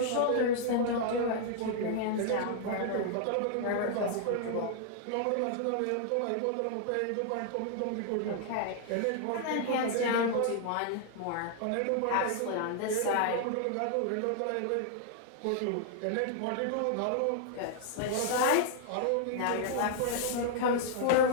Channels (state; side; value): different; both; correlation 0.00